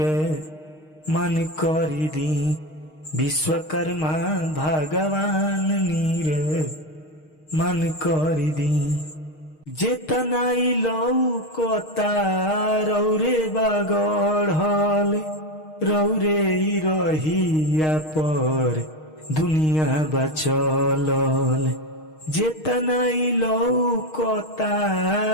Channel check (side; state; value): right; late; 6.4 ms